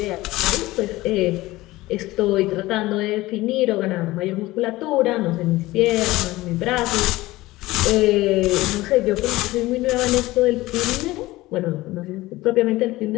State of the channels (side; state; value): right; quieter; 18.6 dB